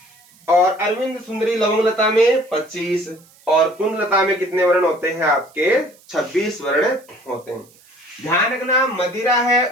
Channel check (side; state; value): right; noise; hiss, 28 dB below the sound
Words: और अरविंद सुंदरी लवंग लता में 25 और कुंद लता में कितने वर्ण होते हैं आपके, 26 वर्ण होते हैं। ध्यान रखना मदिरा है